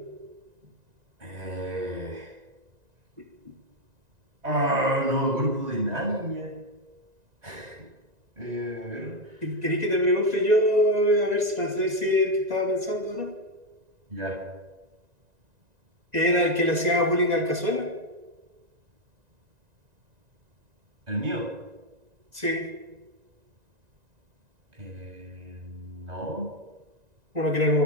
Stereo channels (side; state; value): left; late; 1.9 ms